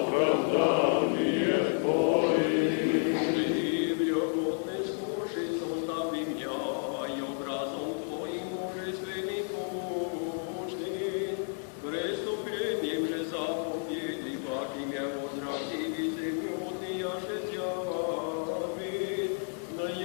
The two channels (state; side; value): silent; right; 57 dB below the other